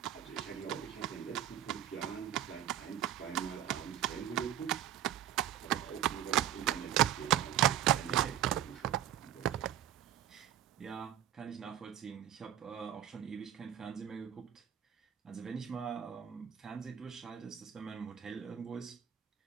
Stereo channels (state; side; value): quieter; left; 11.2 dB